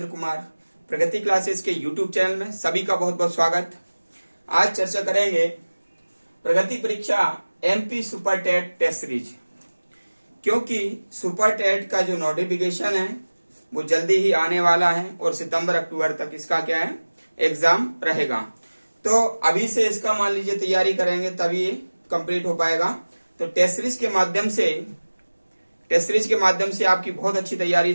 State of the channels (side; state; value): both; inverted; correlation -1.00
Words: कुमार प्रगति क्लासेस के YouTube चैनल में सभी का बहुत बहुत स्वागत। आज चर्चा करेंगे प्रगति परीक्षा MP super TET test series, क्योंकि सुपर टेट का जो नोटिफिकेशन है वो जल्दी ही आने वाला है और सितंबर अक्टूबर तक इसका क्या है एग्जाम रहेगा। तो अभी से इसका मान लीजिए तैयारी करेंगे तभी ये कंप्लीट हो पाएगा। तो टेस्ट सीरीज के माध्यम से आपकी बहुत अच्छी तैयारी